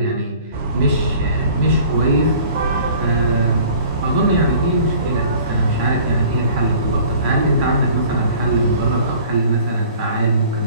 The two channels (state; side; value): inverted; both; correlation -0.49